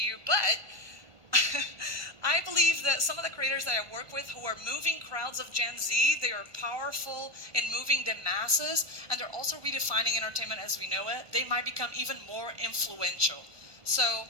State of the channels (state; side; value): late; left; 1.5 ms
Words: but I believe that some of the creators that I work with who are moving crowds of Gen Z, they are powerful in moving the masses, and they're also redefining entertainment as we know it. They might become even more influential. So